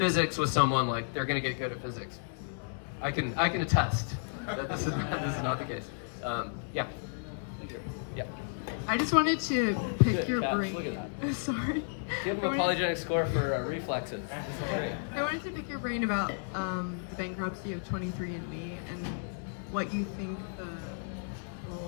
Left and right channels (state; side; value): silent; right; digital silence